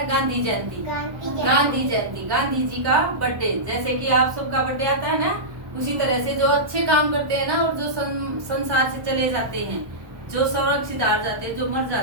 गांधी जयंती। गांधी जयंती, गांधी जी का बर्थडे। जैसे कि आप सबका बर्थडे आता है ना, उसी तरह से जो अच्छे काम करते हैं ना और जो संसार से चले जाते हैं, जो सुरक्षित हार जाते हैं, जो मर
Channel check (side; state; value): left; late; 1.2 ms